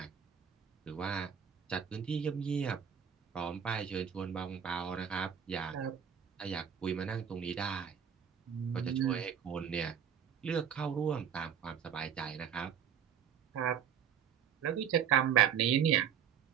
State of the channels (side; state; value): left; quieter; 8.2 dB